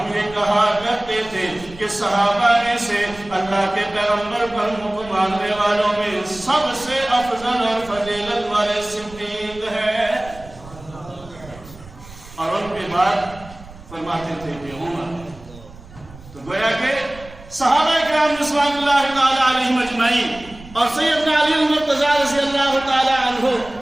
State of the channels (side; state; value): right; noise; rumble, 19 dB below the sound